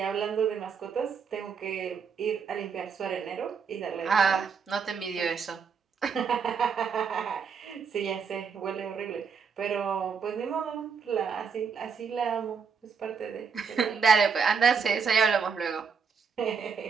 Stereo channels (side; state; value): left; quieter; 6.0 dB